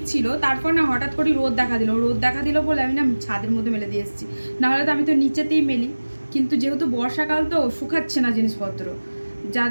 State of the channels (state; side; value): inverted; both; correlation -1.00